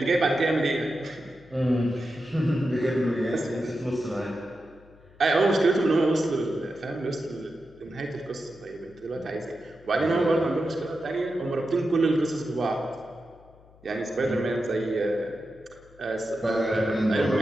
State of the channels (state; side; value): noise; left; hum, 26 dB below the sound